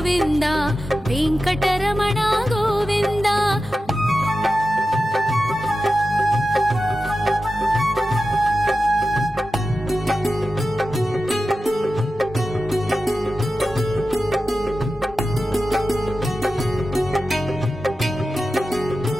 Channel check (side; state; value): both; normal; correlation 0.92